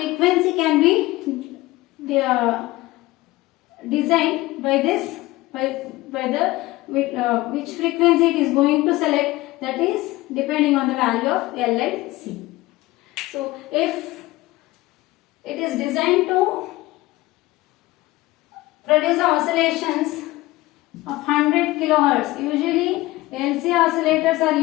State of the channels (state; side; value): quieter; right; 18.9 dB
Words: can be designed by this, which frequency it is going to select, that is depending on the value of L and C. So if it is designed to produce oscillations of 100 kilohertz, usually LC oscillators are